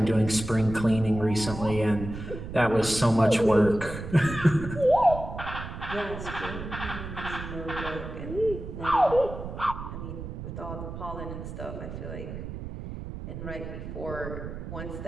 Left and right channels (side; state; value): right; noise; rumble, 8 dB below the sound